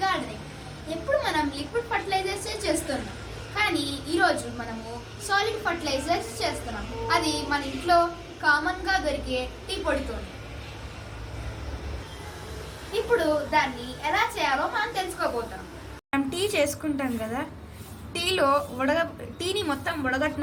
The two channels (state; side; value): identical; both; correlation 1.00